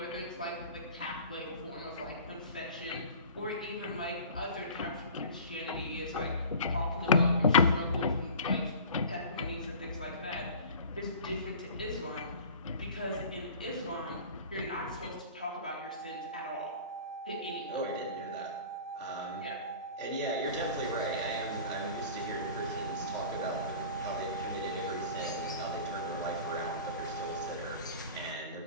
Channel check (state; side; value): inverted; both; correlation -0.41